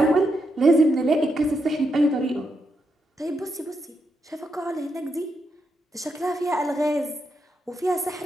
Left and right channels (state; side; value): normal; both; correlation 0.82